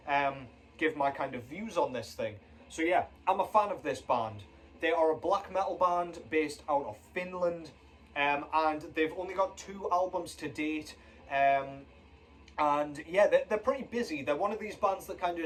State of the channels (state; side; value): identical; both; correlation 1.00